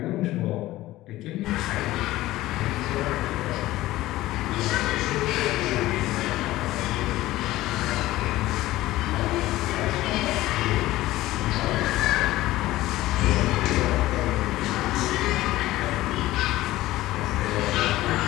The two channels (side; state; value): right; quieter; 16.7 dB